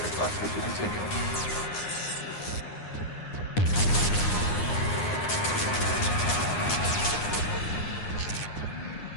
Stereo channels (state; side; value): late; right; 9.7 ms